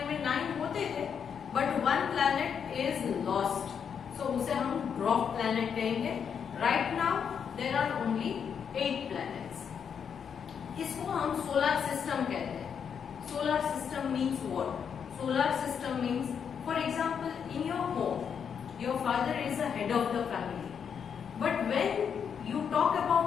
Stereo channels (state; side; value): quieter; right; 7.3 dB